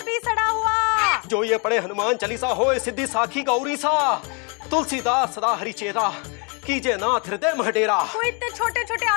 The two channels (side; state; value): right; quieter; 34.6 dB